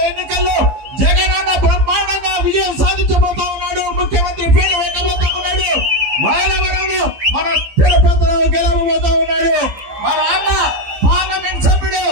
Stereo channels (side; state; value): left; late; 15 ms